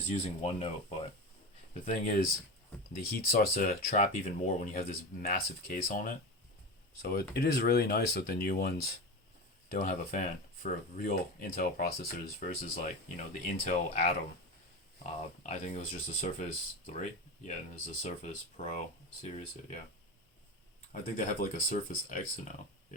using OneNote. But the thing is, the heat starts to trap even more when you have this massive case on it. So it is really nice that the new ones don't have a fan for real Intel processors versus like, you know, the Intel Atom. I think it was just a Surface 3. Yeah, and there's a Surface Pro series. Yeah. I think they have like a Surface X now.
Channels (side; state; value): both; normal; correlation 0.24